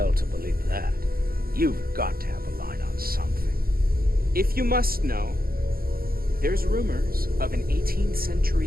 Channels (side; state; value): left; late; 0.43 ms